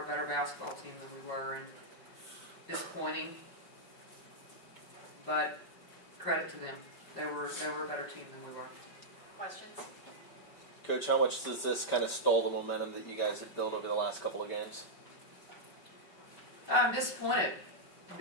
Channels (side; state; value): right; late; 5.4 ms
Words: better basketball team than we were, and disappointing, but credit to them. They were a better team than we were. Questions? Coach, how much does this kind of stall the momentum that you guys have built over the last couple of games? I'm disappointed